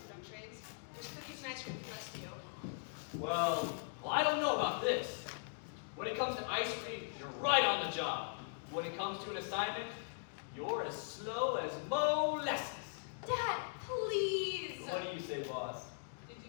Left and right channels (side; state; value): right; silent; digital silence